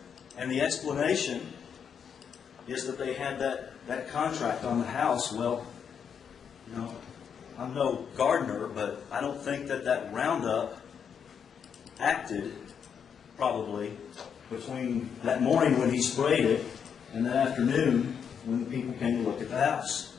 And the explanation is that they had that contract on the house. Well, you know, I'm no gardener, but I don't think that Roundup acted probably between that morning when he sprayed it and that afternoon when the people came to look at the house.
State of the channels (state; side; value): quieter; right; 7.3 dB